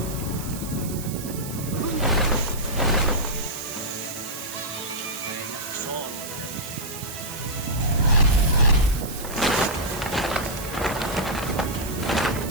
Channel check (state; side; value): noise; right; hiss, 11 dB below the sound